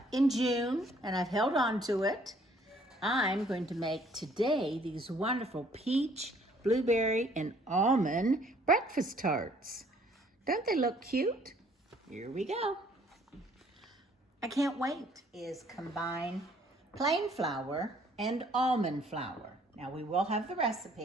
in June, and I've held on to it, I'm going to make today these wonderful peach, blueberry, and almond breakfast tarts. Don't they look cute? Here we go. I can't wait. Is combine plain flour and almond flour. Now we will have the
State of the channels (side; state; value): both; normal; correlation 0.61